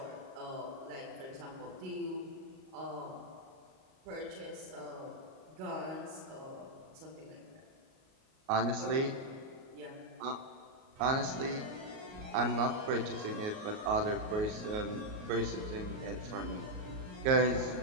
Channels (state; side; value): late; left; 38 ms